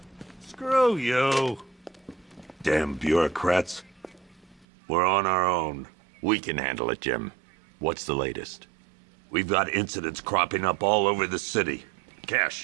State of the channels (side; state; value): left; drops out; at 4.7 s